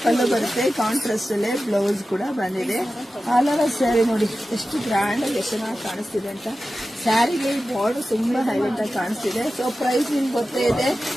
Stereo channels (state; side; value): normal; both; correlation 0.94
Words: ಪಲ್ಲು ಬರುತ್ತೆ, ಕಾಂಟ್ರಾಸ್ಟ್ ಅಲ್ಲೇ ಬ್ಲೌಸ್ ಕೂಡ ಬಂದಿದೆ. ಆಲ್ ಓವರ್ ಸ್ಯಾರಿ ನೋಡಿ ಎಷ್ಟು ಗ್ರ್ಯಾಂಡ್ ಆಗಿ ಎಷ್ಟು ಚೆನ್ನಾಗಿ ಕಾಣಿಸ್ತಿದೆ ಅಂತ. ಸ್ಯಾರಿಗೆ ಬಾರ್ಡರ್ ತುಂಬಾ ಹೈಲೈಟ್ ಆಗಿ ಕಾಣಿಸ್ತಿದೆ. ಸೊ ಪ್ರೈಸ್ ನಿಮ್ಗೆ ಗೊತ್ತೇ ಇದೆ,